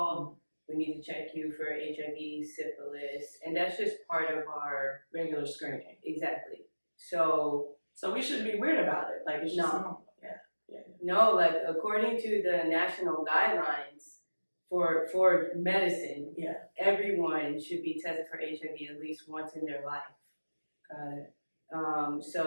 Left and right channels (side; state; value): both; inverted; correlation -1.00